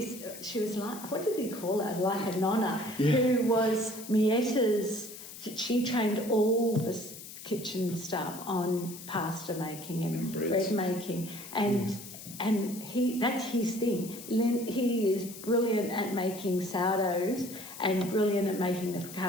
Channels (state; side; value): noise; left; hiss, 13 dB below the sound